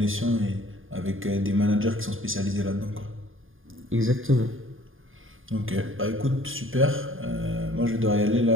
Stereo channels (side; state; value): left; late; 0.59 ms